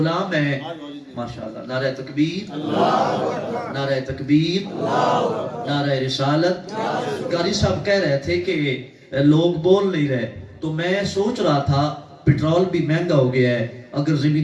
ہیں ماشاءاللہ نعرہ تکبیر نعرہ تکبیر نعرہ رسالت قاری صاحب کہہ رہے تھے کہ لوگ بول نہیں رہے تو میں سوچ رہا تھا پیٹرول بھی مہنگا ہو گیا ہے اگر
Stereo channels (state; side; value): identical; both; correlation 1.00